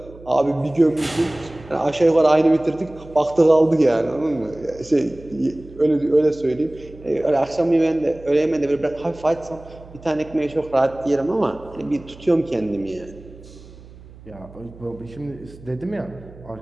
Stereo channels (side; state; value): right; noise; hum, 20 dB below the sound